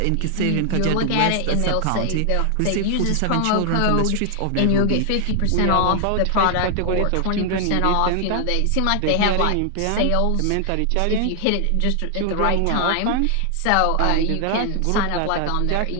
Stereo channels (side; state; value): both; different; correlation 0.00